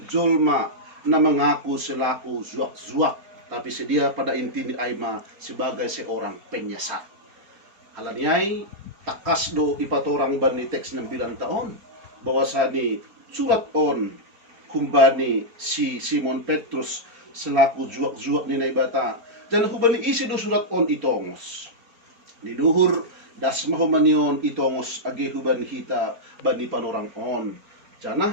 jolma na mengaku selaku zuak-zuak tapi sedia pada inti ni Aima sebagai seorang penyesat. Halani ay takas do ipatorang bani teks ng bilang taon bahwasani surat on kumbani si Simon Petrus selaku juak-juak ni naibata dan kumbani isi do surat on itongos niduhur das mahumanion itongos agi huban hita bani panorang on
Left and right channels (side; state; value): left; late; 4.4 ms